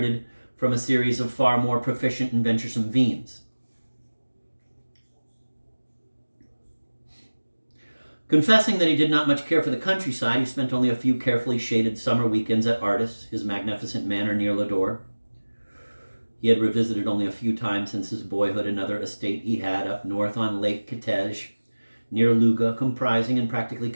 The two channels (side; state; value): both; inverted; correlation -1.00